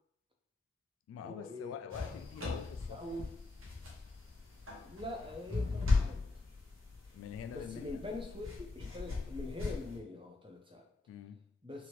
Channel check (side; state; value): right; quieter; 3.4 dB